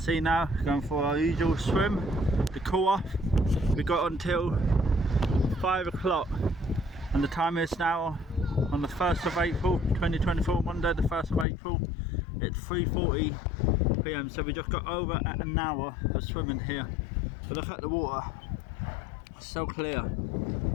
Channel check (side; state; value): right; drops out; at 11.5 s